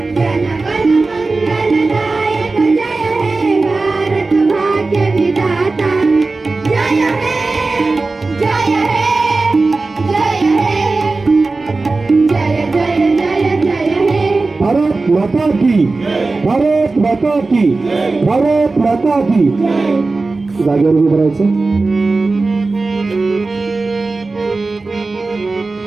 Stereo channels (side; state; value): left; quieter; 3.6 dB